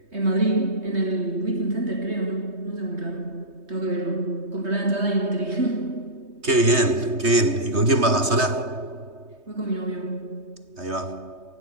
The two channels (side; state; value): left; late; 3.2 ms